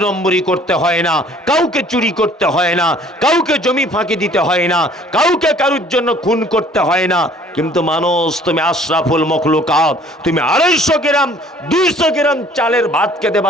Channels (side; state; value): both; normal; correlation 0.55